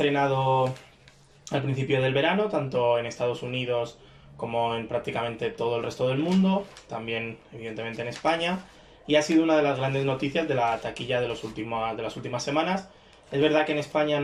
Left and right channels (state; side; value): identical; both; correlation 1.00